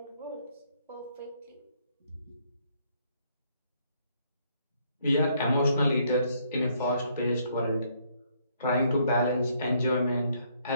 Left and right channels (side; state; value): both; inverted; correlation -0.69